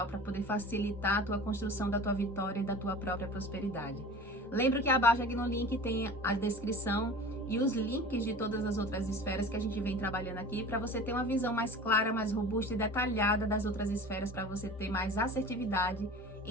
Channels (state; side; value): normal; both; correlation 0.38